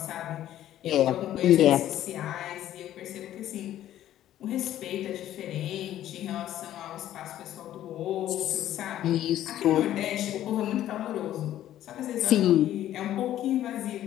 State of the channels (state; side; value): quieter; right; 12.5 dB